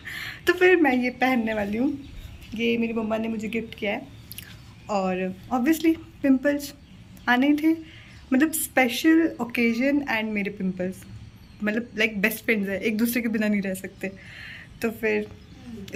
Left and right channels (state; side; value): identical; both; correlation 1.00